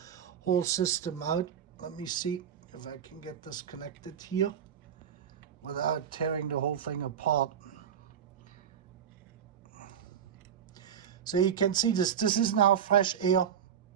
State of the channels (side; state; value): left; quieter; 8.6 dB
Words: whole system out. Let me see if I can get this connected here without tearing the whole thing apart. So you can see this is now fresh air.